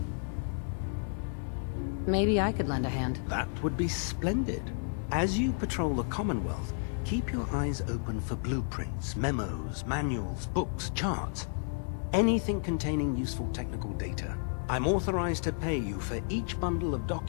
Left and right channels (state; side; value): silent; right; 57 dB below the other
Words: Maybe I could lend a hand. That would be splendid. As you patrol the Commonwealth, keep your eyes open for blueprints, memos, manuals, books, charts. Anything containing useful technical data. I'm authorized to pay you for each bundle of